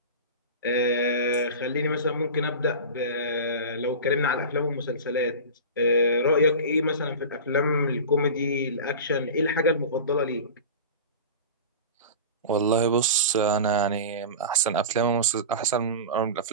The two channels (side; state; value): both; inverted; correlation -0.30